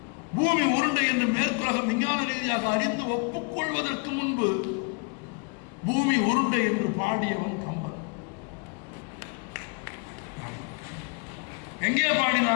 பூமி உருண்டை என்று மேற்குலகம் விஞ்ஞான ரீதியாக அறிந்து ஒப்புக்கொள்வதற்கு முன்பு பூமி உருண்டை என்று பாடியவன் கம்பன். எங்கே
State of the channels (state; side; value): quieter; right; 33.1 dB